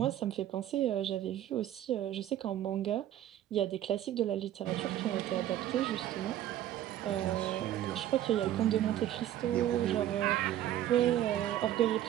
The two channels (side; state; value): left; quieter; 12.3 dB